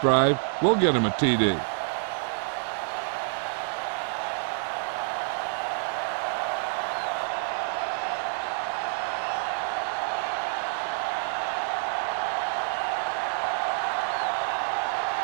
drive will get them a TD.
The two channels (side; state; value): left; silent; digital silence